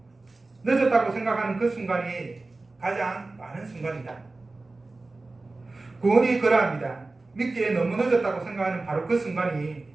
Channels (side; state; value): left; quieter; 3.3 dB